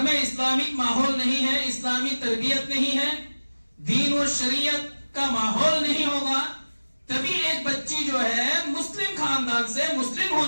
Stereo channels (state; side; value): inverted; both; correlation -1.00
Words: میں اسلامک ماحول نہیں ہے، اسلامی تربیت نہیں ہے، دین و شریعت کا ماحول نہیں ہوگا، تبھی ایک بچی جو ہے مسلم خاندان سے مسلم